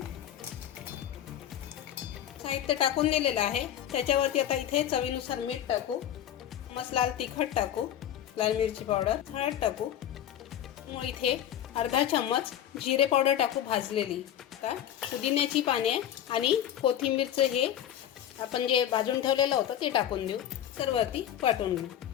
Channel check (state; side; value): quieter; right; 10.8 dB